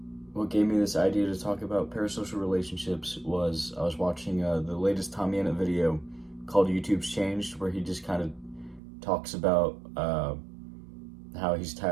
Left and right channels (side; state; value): left; drops out; at 8.8 s